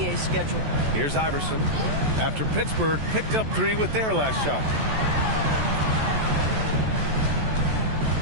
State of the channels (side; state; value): left; late; 14 ms